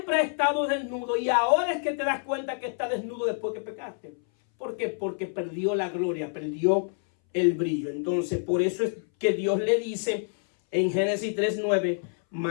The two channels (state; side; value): silent; right; 60 dB below the other